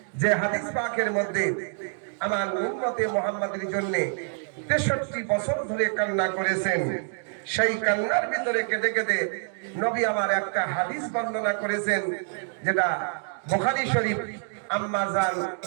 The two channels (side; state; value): left; silent; 60 dB below the other